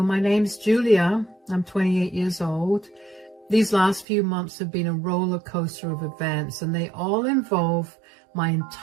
my name's Julia. I'm 28 years old. These last few months have been a roller coaster of events, and they all involve my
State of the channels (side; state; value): left; drops out; at 4.0 s